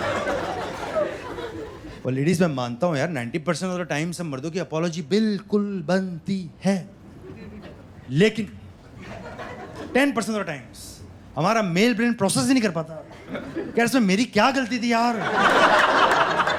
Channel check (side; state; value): both; identical; correlation 1.00